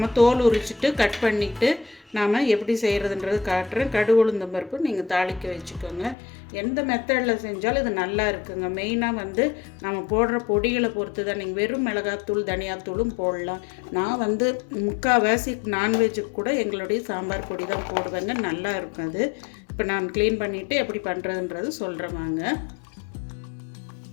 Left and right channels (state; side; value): drops out; right; at 6.2 s